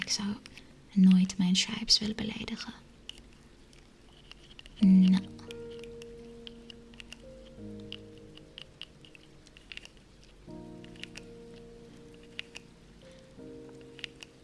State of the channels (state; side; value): identical; both; correlation 1.00